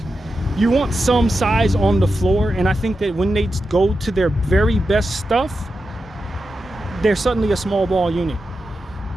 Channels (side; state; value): both; normal; correlation 0.89